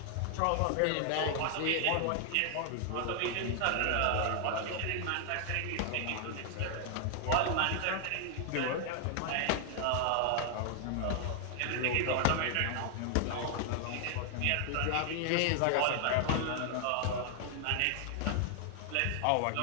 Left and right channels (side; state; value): both; different; correlation 0.00